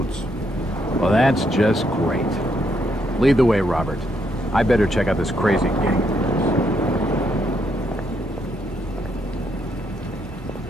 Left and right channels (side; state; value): both; normal; correlation 0.76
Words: Well, that's just great. Lead the way, Robert. I better check out this crazy gang.